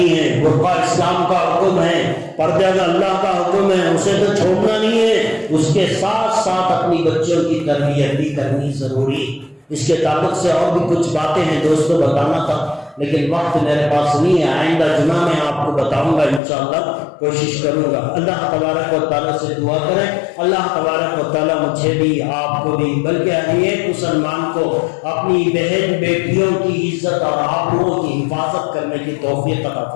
ہے, برقع اسلام کا حکم ہے, پردہ کا اللہ کا حکم ہے, اسے تو چھوڑنا نہیں ہے, اس کے ساتھ ساتھ اپنی بچوں کی تربیت بھی کرنی ضروری. اس کے تعلق سے اور بھی کچھ باتیں ہیں دوستوں بتانا تھا, لیکن وقت میرے پاس نہیں ہے. آئندہ جمعہ میں آپ کو بتاؤں گا انشاءاللہ, کوشش کروں گا. اللہ تبارک و تعالیٰ سے دعا کریں, اللہ تبارک و تعالیٰ مجھے بھی آپ کو بھی بلکہ ہر ایک مسلمان کو اپنی بہن بیٹیوں کی عزت اور آبرو کی حفاظت کرنے کی توفیق عطا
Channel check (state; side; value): drops out; right; at 16.4 s